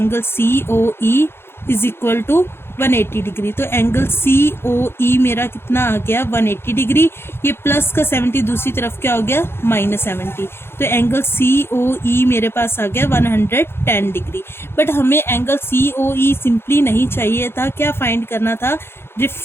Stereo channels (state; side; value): late; right; 0.11 ms